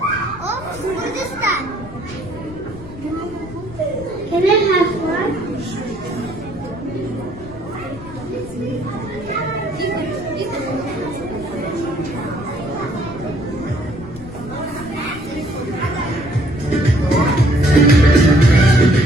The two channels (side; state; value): left; noise; rumble, 16 dB below the sound